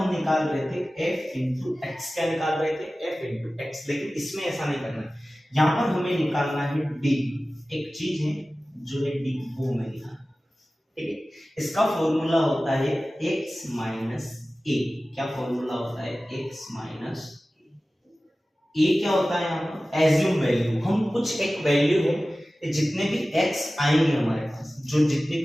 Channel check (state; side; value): normal; both; correlation 0.96